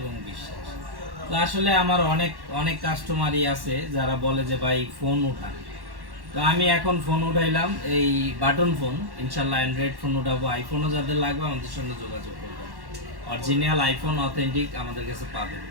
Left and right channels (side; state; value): left; late; 1.1 ms